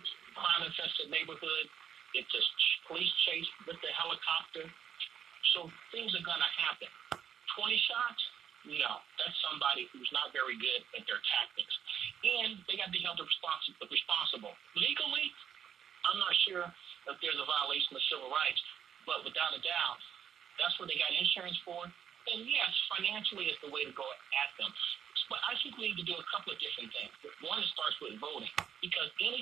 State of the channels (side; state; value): left; quieter; 8.6 dB